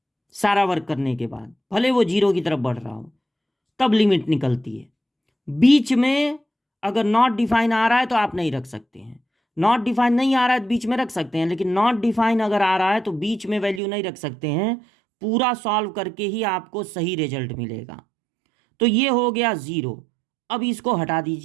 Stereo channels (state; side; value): drops out; left; at 13.8 s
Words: सारा वर्क करने के बाद, भले वो 0 की तरफ बढ़ रहा हो, तब लिमिट निकलती है। बीच में अगर नॉट डिफाइन आ रहा है तो आप नहीं रख सकते हैं, नॉट डिफाइन नहीं आ रहा है तो बीच में रख सकते हैं, लेकिन नॉट डिफाइन अगर आ रहा है तो बीच में वैल्यू नहीं रख सकते हैं। पूरा सॉल्व करके ही आपको सही रिजल्ट मिलेगा। तो ये हो गया 0। अब इसको हटा